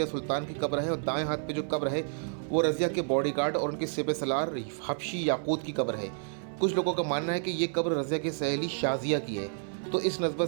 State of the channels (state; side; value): silent; left; 58 dB below the other